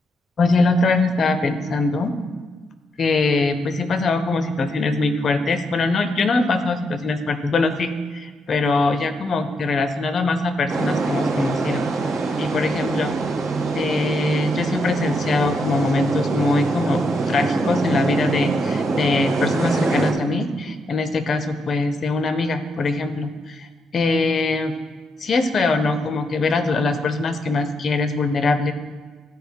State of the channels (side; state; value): both; normal; correlation 0.79